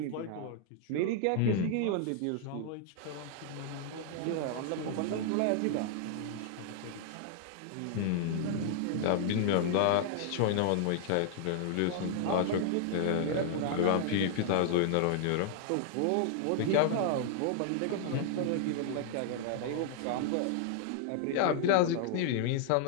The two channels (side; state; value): both; different; correlation -0.01